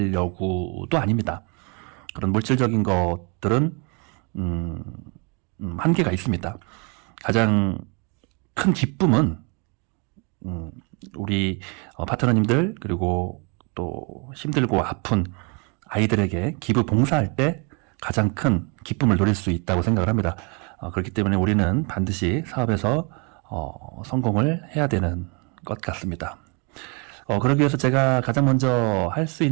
아닙니다. 그런 물질적인 것들은 한계가 있습니다. 가장 큰 기쁨은 우리 파트너님들, 그리고 또 힘들고 아픈 아이들에게 기부 봉사할 때 가장 큰 기쁨을 누릴 수 있다고 생각을 합니다. 그렇기 때문에 우리는 반드시 사업에서 성공을 해야 되는 것 같습니다. 그러기 위해서 제가 가장 먼저 할 수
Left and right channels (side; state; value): left; quieter; 33.7 dB